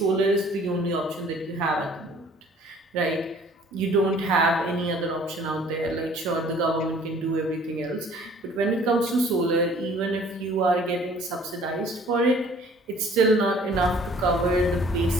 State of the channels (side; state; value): both; normal; correlation 0.54